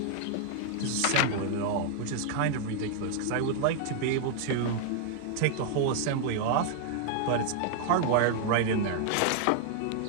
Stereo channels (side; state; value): both; different; correlation 0.00